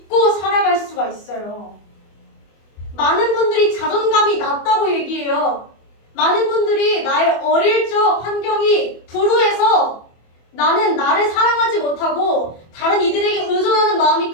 살아갈 수가 있어요. 많은 분들이 자존감이 낮다고 얘기해요. 많은 분들이 나의 어릴 적 환경이 불우해서 나는 나를 사랑하지 못하고 다른 이들에게 의존하는 마음이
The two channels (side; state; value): right; late; 24 ms